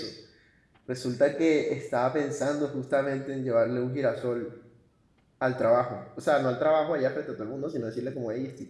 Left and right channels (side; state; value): both; identical; correlation 1.00